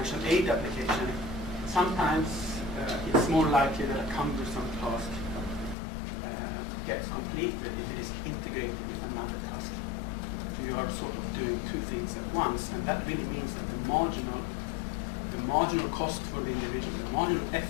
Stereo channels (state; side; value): drops out; right; at 5.8 s